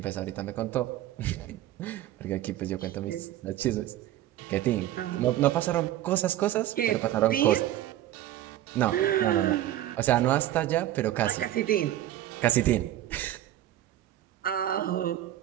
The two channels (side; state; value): left; quieter; 13.4 dB